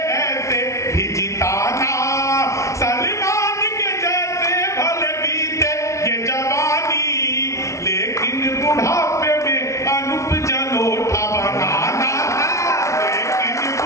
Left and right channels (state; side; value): late; right; 0.14 ms